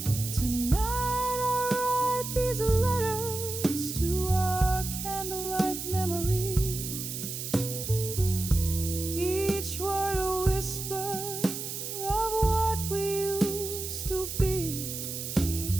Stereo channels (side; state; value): right; noise; hiss, 6 dB below the sound